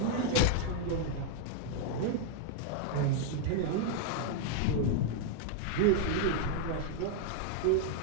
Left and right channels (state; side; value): different; both; correlation 0.00